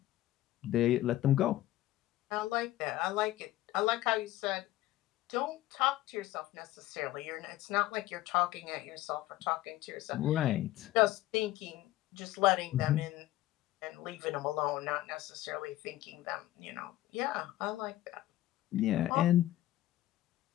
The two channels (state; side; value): quieter; right; 15.3 dB